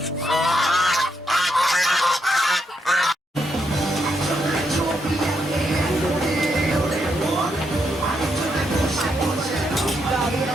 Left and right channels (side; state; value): both; normal; correlation 0.79